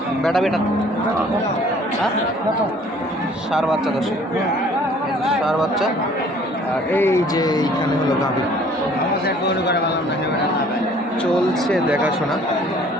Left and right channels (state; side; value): normal; both; correlation 0.55